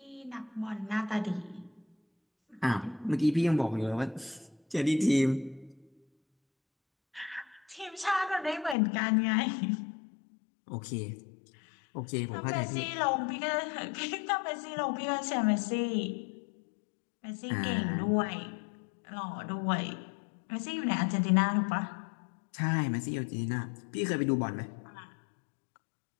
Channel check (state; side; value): drops out; right; at 8.8 s